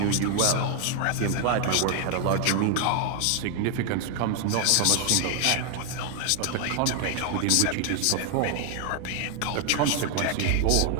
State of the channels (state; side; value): different; both; correlation 0.00